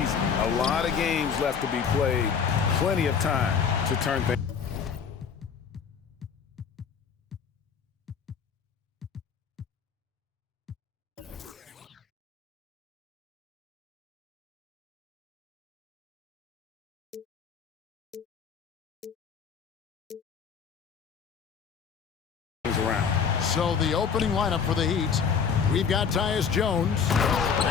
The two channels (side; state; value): right; quieter; 6.6 dB